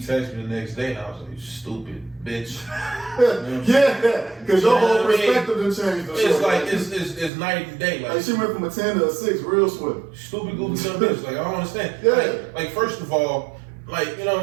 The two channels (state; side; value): drops out; left; at 7.3 s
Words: me the next day and I was like, stupid bitch. Yeah, because your whole perspective done changed. It's like it's night and day. Like she went from a 10 to a 6 real swift. Stupid goofy dumb bitch. Like I don't understand. Yeah. Like first of all, like, you